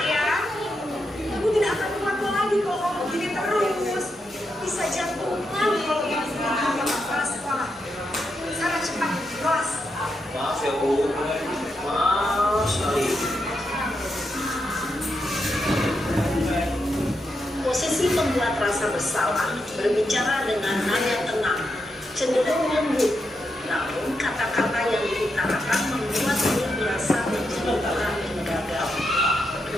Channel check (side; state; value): both; normal; correlation 0.84